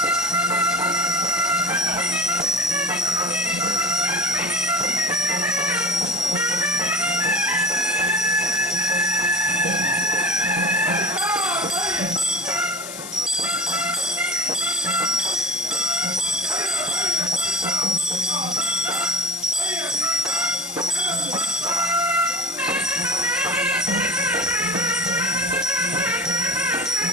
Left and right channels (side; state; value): left; noise; hiss, 9 dB below the sound